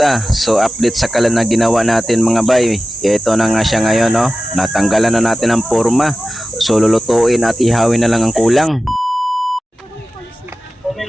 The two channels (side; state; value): both; normal; correlation 0.93